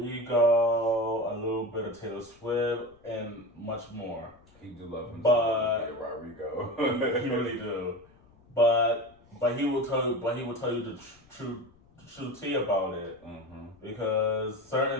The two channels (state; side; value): noise; left; rumble, 29 dB below the sound